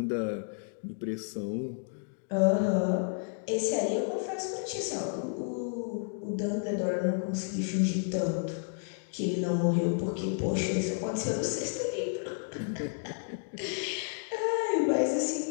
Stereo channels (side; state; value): right; silent; 57 dB below the other